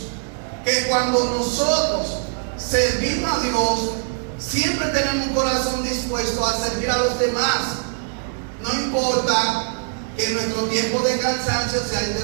que cuando nosotros servimos a Dios, siempre tenemos un corazón dispuesto a servir a los demás. No importa que nuestro tiempo de cansancio sea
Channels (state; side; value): silent; left; 62 dB below the other